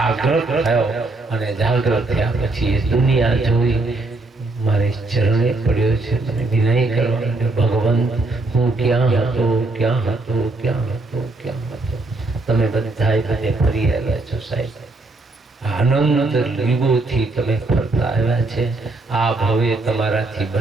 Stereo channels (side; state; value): left; quieter; 3.1 dB